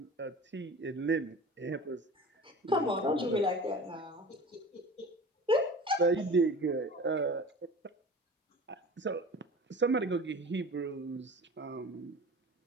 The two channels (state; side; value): normal; both; correlation 0.39